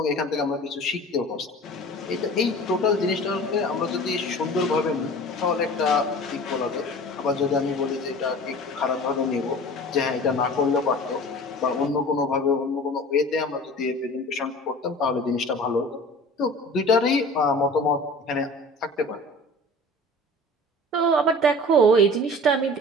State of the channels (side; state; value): both; normal; correlation 0.41